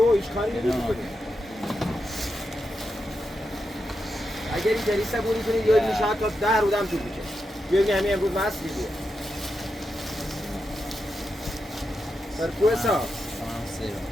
هیچ کاری نمیشه کنیم اگر این جریسه بونی کنید یا میشه حتی 10 رودم طول میشه بیا همین امروز مصری بیه سرکوه صاحب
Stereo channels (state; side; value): normal; both; correlation 0.87